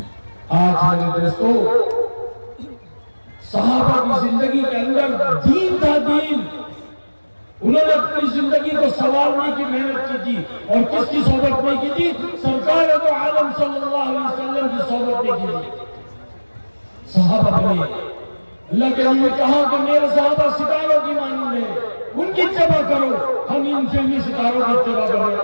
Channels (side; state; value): both; inverted; correlation -1.00